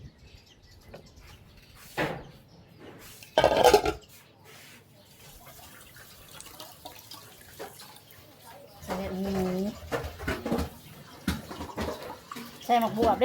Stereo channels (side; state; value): both; identical; correlation 1.00